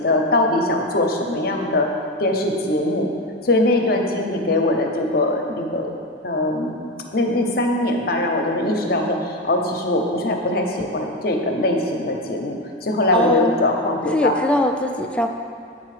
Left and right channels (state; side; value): normal; both; correlation 0.17